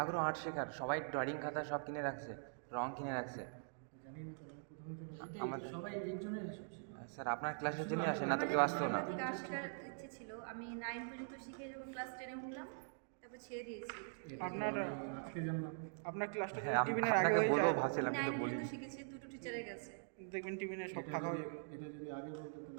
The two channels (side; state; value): left; silent; digital silence